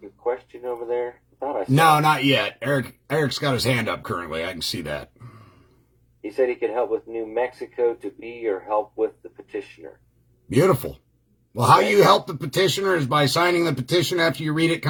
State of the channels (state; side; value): identical; both; correlation 1.00